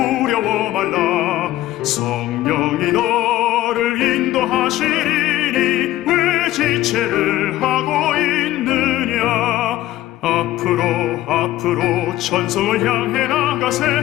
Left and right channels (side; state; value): right; quieter; 15.1 dB